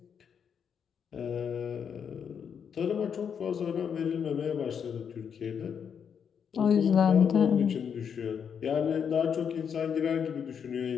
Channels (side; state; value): right; quieter; 7.4 dB